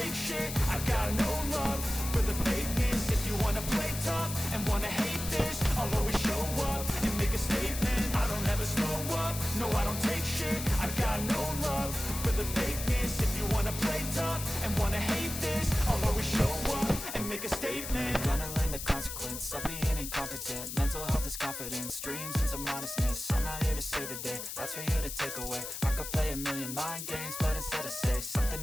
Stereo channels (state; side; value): noise; left; hiss, 7 dB below the sound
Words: shit. I got no love for the fakeness. If you wanna play tough and wanna hate this, I'll always show up and make a statement. I don't ever slow up, no I don't take shit. I got no love for the fakeness. If you wanna play tough and wanna hate this, I'll always show up and make a statement. Gonna learn the consequence of being incompetent. Mental health is confidence, dreams into modestness. I'm not here to save the day, that's for you to take away. I could play a million mind games, but instead I say something